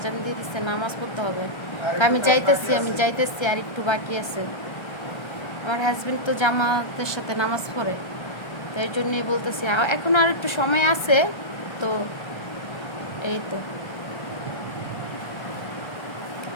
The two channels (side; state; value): right; late; 1.3 ms